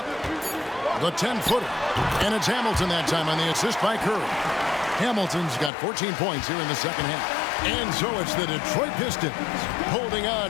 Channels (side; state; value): right; drops out; at 5.7 s